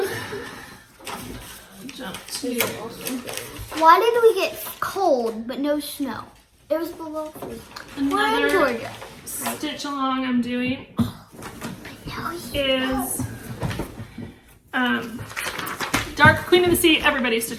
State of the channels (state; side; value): identical; both; correlation 1.00